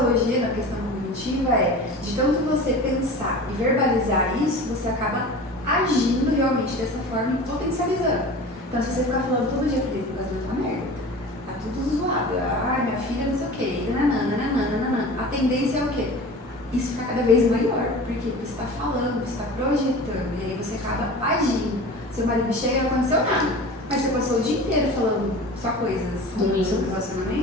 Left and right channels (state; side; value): normal; both; correlation 0.36